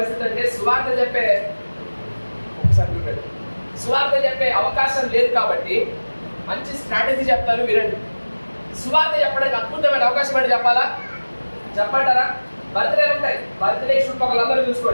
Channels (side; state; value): both; inverted; correlation -1.00